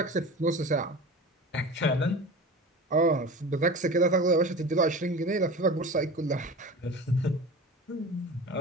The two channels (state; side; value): normal; both; correlation 0.34